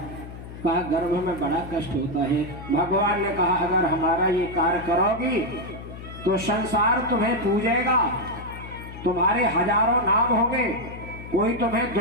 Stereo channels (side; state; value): left; noise; hum, 13 dB below the sound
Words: कहा गर्भ में बड़ा कष्ट होता है। भगवान ने कहा अगर हमारा ये कार्य करोगी तो संसार तुम्हें पूजेगा, तुम्हारे हजारों नाम होंगे, कोई तुम्हें